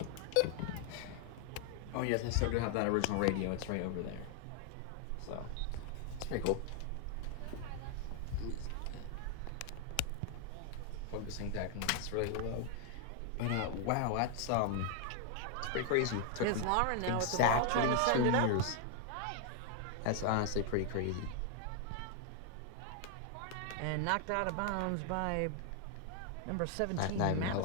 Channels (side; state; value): both; different; correlation 0.00